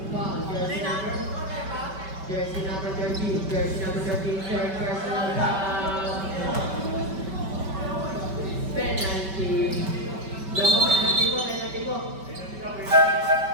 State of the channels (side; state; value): left; late; 5.2 ms